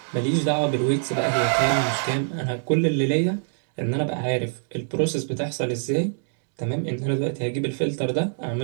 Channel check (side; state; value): left; silent; digital silence